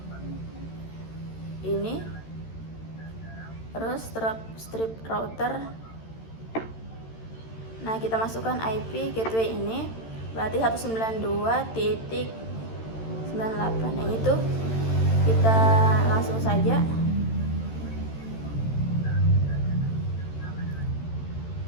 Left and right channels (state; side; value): late; right; 13 ms